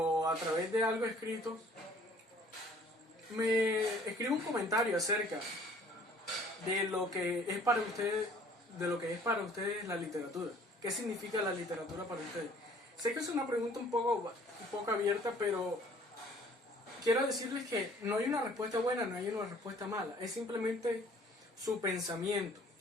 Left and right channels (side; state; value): both; normal; correlation 0.55